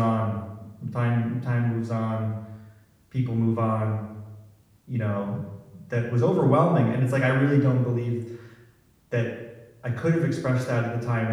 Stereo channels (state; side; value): identical; both; correlation 1.00